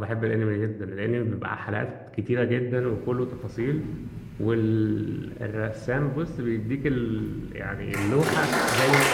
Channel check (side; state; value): both; identical; correlation 1.00